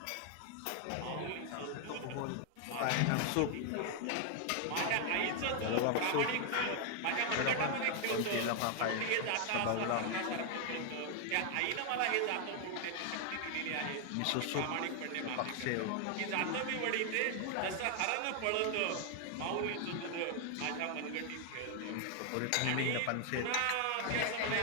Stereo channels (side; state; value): both; different; correlation 0.00